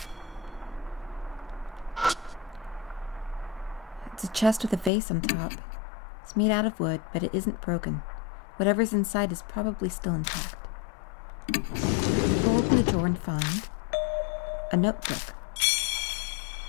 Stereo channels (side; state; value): right; drops out; at 4.9 s